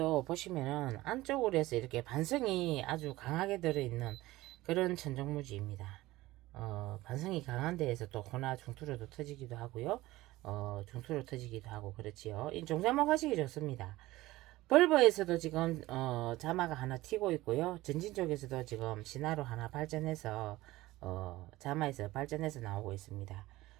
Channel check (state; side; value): quieter; left; 18.0 dB